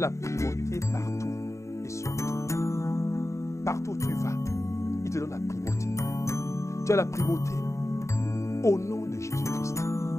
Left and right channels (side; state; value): right; late; 0.14 ms